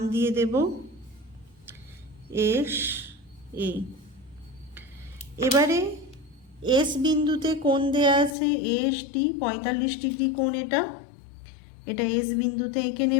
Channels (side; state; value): right; drops out; at 8.3 s